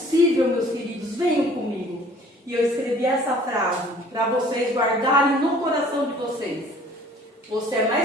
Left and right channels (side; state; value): both; normal; correlation 0.53